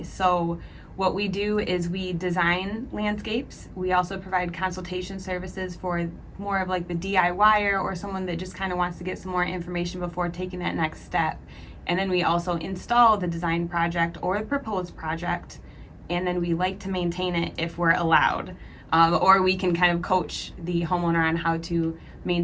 So what we do is we design landscapes. We also provide consultation services for more of like the DIYer or someone that just kind of wants to get some more information before taking that next step. And then we also install the design project or the proposed project, and then we like to maintain it if we're allowed. Or we can kind of coach the homeowner on how to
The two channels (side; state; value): both; identical; correlation 1.00